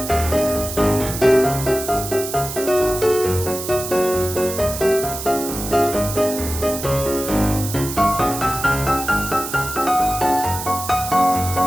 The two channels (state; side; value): noise; right; hiss, 8 dB below the sound